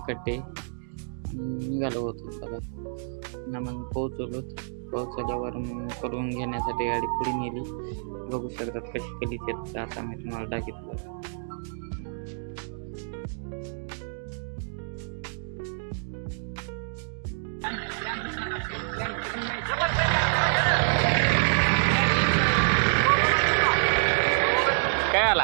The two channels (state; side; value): silent; left; digital silence